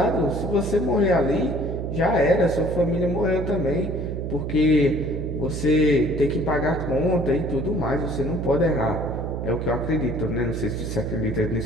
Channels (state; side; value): noise; right; hum, 4 dB below the sound